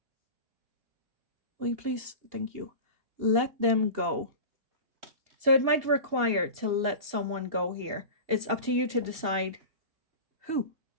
Will you please? Thank you. Let them go. So it might require to let someone go here. It's up to you to decide who.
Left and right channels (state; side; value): late; left; 2.7 ms